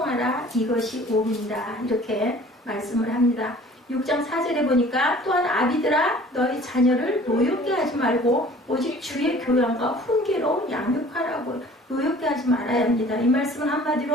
이것이 옳으니라. 이렇게 말씀을 합니다. 6장 4절에 보니까 또한 아비들아 너희 자녀를 노엽게 하지 말고 오직 주의 교양과 훈계로 양육하라고. 노엽게 하지 말아야 합니다. 이 말씀은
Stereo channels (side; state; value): both; normal; correlation 0.49